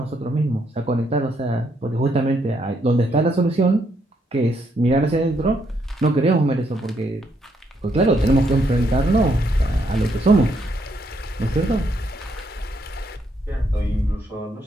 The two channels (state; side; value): normal; both; correlation 0.75